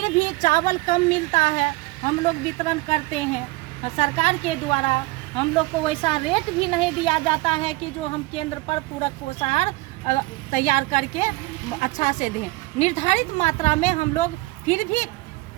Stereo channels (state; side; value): quieter; left; 21.9 dB